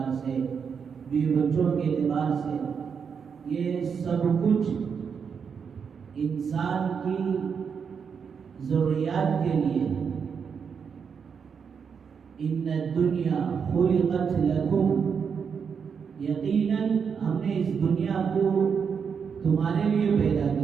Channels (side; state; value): left; quieter; 6.5 dB